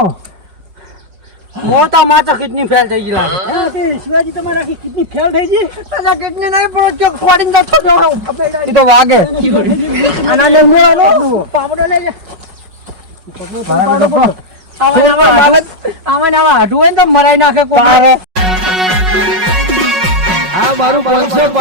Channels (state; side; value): late; left; 5.4 ms